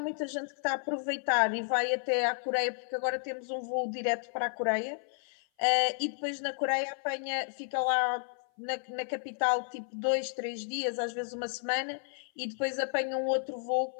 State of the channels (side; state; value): right; silent; 56 dB below the other